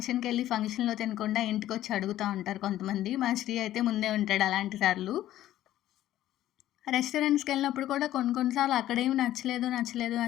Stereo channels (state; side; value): quieter; right; 13.4 dB